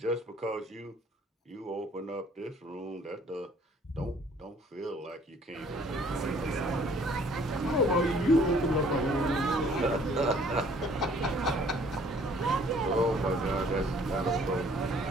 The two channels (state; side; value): normal; both; correlation 0.57